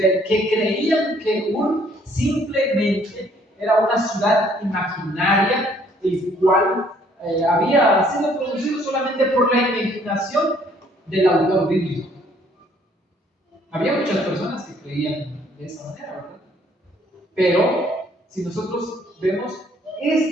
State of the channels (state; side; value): normal; both; correlation 0.63